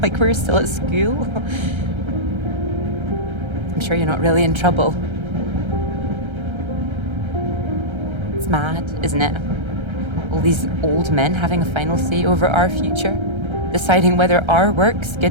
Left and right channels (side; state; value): left; late; 1.3 ms